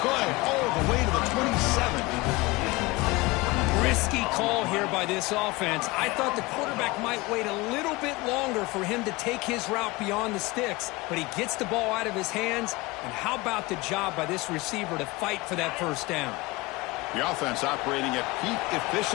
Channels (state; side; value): quieter; right; 22.5 dB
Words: play all the way to the 27. Risky call here by this offense. I thought the quarterback might wait a little bit longer for him to take his route beyond the sticks, but he gets the ball out of his hands. And how about the job by this receiver to fight for that 1st down? The offense operating at peak